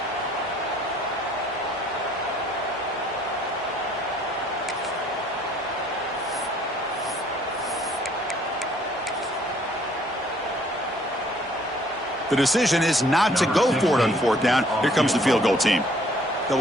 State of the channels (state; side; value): normal; both; correlation 0.61